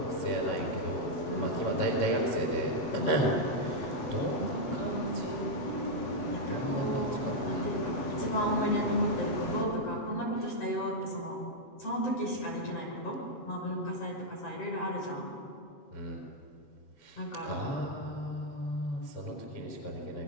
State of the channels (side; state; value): right; late; 7.8 ms